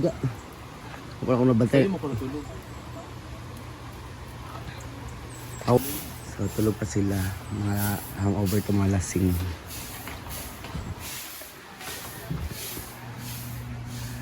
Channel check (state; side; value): identical; both; correlation 1.00